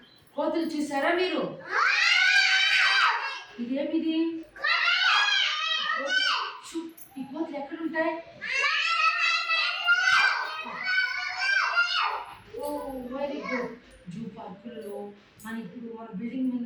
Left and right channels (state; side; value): identical; both; correlation 1.00